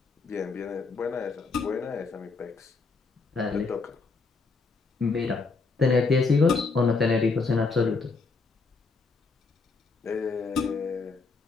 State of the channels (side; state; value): right; quieter; 4.3 dB